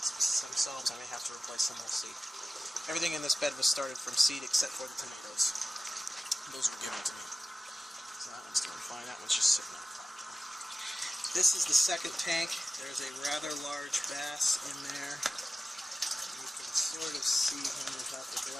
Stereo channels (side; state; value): both; normal; correlation 0.96